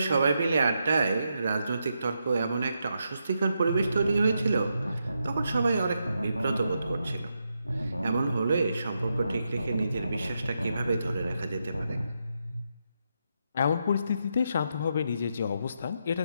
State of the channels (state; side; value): inverted; both; correlation -0.83